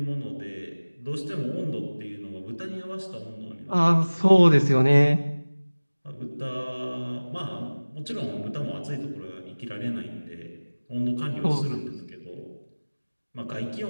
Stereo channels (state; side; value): inverted; both; correlation -1.00